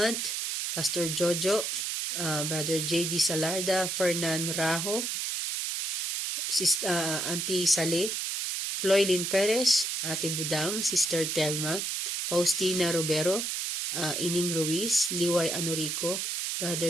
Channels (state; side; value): noise; right; hiss, 1 dB below the sound